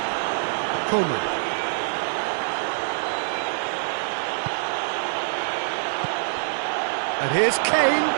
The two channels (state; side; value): silent; left; digital silence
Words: Coman. And here's Kane,